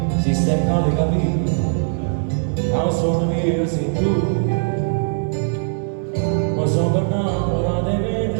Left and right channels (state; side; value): silent; left; 64 dB below the other